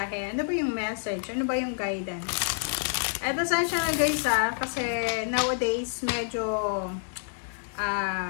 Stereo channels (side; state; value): right; silent; digital silence